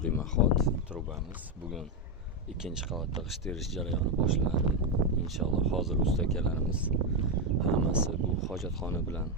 demaxot trubamiz. Bugun ikkinchi qavatda g'isht terish jarayoni boshlanadi. Inshaalloh hozir usta akalarimiz hammasi bu hojatxona bilan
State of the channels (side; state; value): both; normal; correlation 0.07